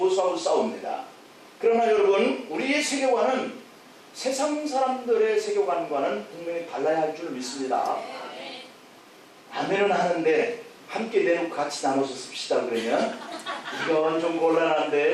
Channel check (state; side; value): identical; both; correlation 1.00